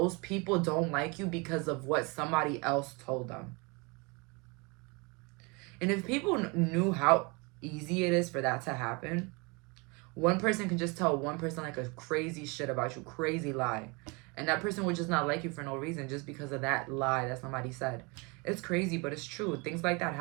people don't like you because of what somebody else told them. And if people knew how easy it is for that to happen, one person can just tell one person, like, a crazy shit about you, crazy lie, and that person would just not like you for no reason, just because of that lie that somebody said. It's crazy, but it's true. Things like that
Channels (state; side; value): quieter; left; 29.1 dB